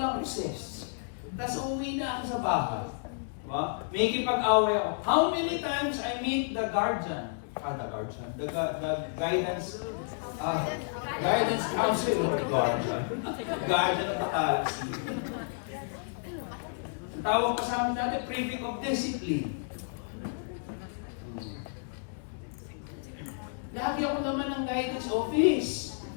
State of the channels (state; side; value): silent; right; digital silence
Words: recess. Tapos umuwi na ako sa bahay. Diba? May kipag-away ako. How many times I meet the guardian? The guidance counselor, guardian of the galaxy. Ang tawag pa sa amin dati, prefect of discipline. Lagi ako naman ng guidance office.